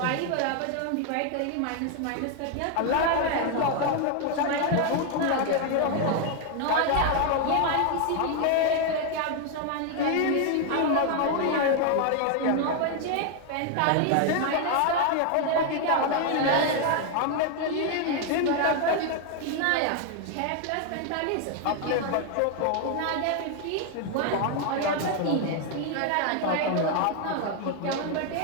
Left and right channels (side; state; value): both; different; correlation 0.00